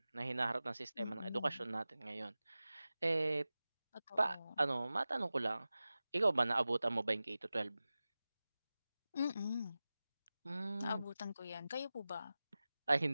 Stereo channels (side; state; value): both; inverted; correlation -0.96